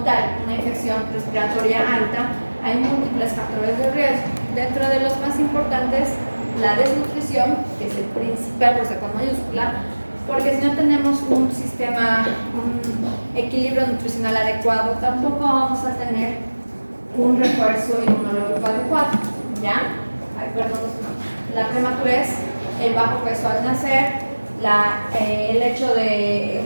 tal una infección respiratoria alta hay múltiples factores de riesgo. Dentro de los más importantes, la desnutrición, que es el principal, o sea, con mayúscula, porque si no tenemos un equilibrio nutricional adecuado, tampoco vamos a tener un refuerzo inmunológico adecuado, ¿ya? La prematurez, el bajo peso al nacer, el hecho de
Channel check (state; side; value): inverted; both; correlation -1.00